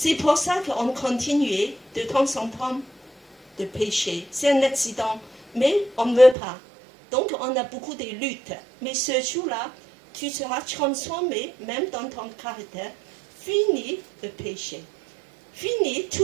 pour ça qu'on continue de temps en temps de pécher. C'est un accident, mais on ne veut pas. Donc on a beaucoup de luttes. Mais ce jour-là, tu seras transformé, même dans ton caractère. Fini le péché. Fini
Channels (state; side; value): drops out; left; at 6.4 s